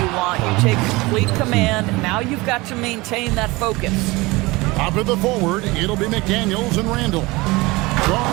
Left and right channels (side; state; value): left; quieter; 22.5 dB